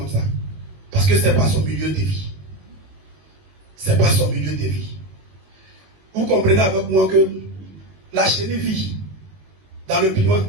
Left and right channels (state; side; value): late; left; 21 ms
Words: ça. Parce que ce n'est pas son milieu de vie. Ce n'est pas son milieu de vie. Vous comprenez avec moi que la chenille vit dans le piment.